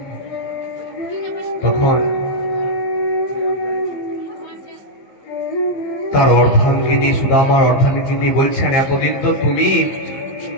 তখন তার অর্ধাঙ্গিনী, সুদামার অর্ধাঙ্গিনী বলছেন, এতদিন তো তুমি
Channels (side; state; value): right; late; 15 ms